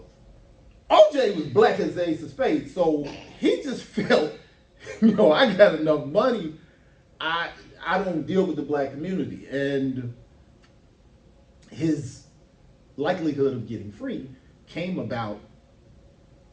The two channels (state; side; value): identical; both; correlation 1.00